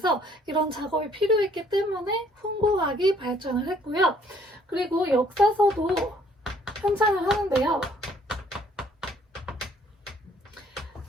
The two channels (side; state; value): both; normal; correlation 0.62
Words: 이런 작업이 필요했기 때문에 훈고학이 발전을 했고요. 그리고 역사서도 편찬을 하는데요.